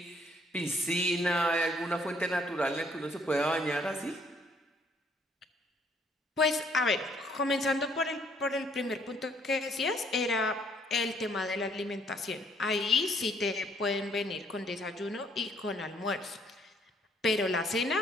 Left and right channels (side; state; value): both; normal; correlation 0.65